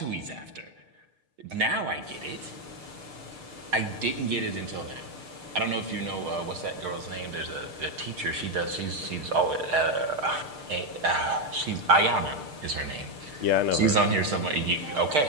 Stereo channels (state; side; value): late; left; 6.7 ms